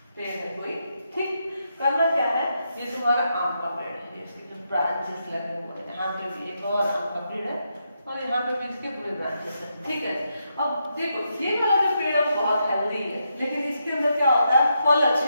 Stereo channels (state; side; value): inverted; both; correlation -0.82